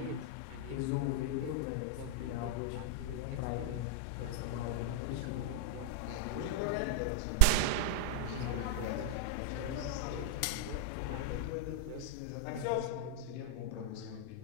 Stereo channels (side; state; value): both; different; correlation -0.01